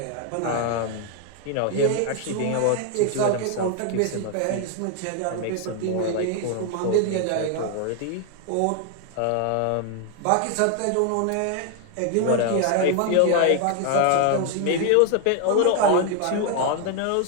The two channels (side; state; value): both; different; correlation 0.00